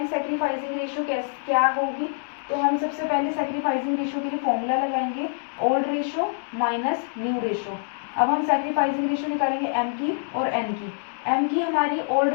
सैक्रिफाइसिंग रेशो क्या होगी, तो हम सबसे पहले सैक्रिफाइसिंग रेशो के लिए फॉर्मूला लगाएंगे old ratio minus new ratio. अब हम सैक्रिफाइसिंग रेशो निकालेंगे एम की और एन की। एम की हमारी ओल्ड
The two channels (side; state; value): right; silent; digital silence